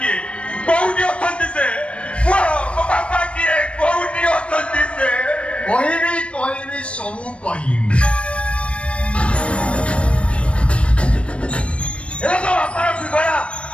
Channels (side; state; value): right; late; 0.060 ms